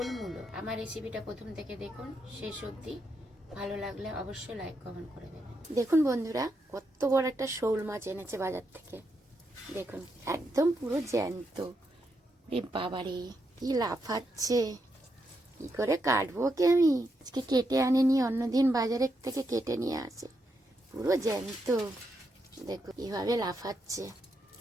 মূলো। আমার রেসিপিটা প্রথম থেকে দেখুন শেষ অবধি। ভালো লাগলে অবশ্যই লাইক কমেন্ট করে দেবেন। দেখুন বন্ধুরা, কত বড় একটা শোল মাছ এনেছে বাজার থেকে। দেখুন একদম পুরো জ্যান্ত। রে বাবারে, কি লাফাচ্ছে! কি করে কাটবো কি আমি? আজকে কেটে আনেনি, অন্যদিন বাজারের থেকে কেটে নিয়ে আসে। পুরো জ্যান্ত। দেখুন কিভাবে লাফাচ্ছে।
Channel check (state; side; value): normal; both; correlation 0.82